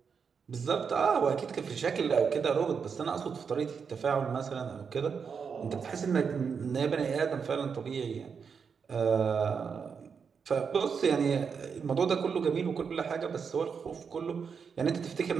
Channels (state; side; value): quieter; left; 6.1 dB